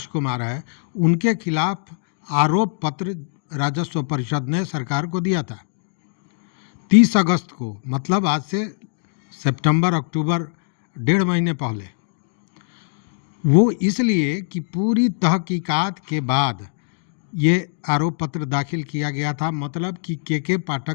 कुमार है, उनके खिलाफ आरोप पत्र राजस्व परिषद ने सरकार को दिया था 30 अगस्त को, मतलब आज से सितंबर अक्टूबर 1.5 महीने पहले। वो इसलिए कि पूरी तहकीकात के बाद ये आरोप पत्र दाखिल किया गया था, मतलब कि के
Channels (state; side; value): silent; right; digital silence